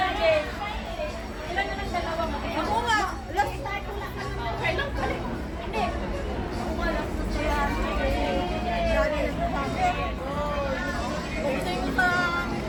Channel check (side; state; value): both; identical; correlation 1.00